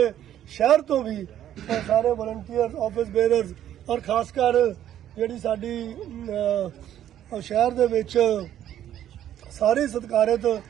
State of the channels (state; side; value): quieter; left; 11.3 dB